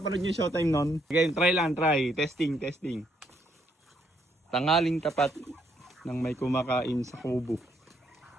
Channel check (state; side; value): normal; both; correlation 0.72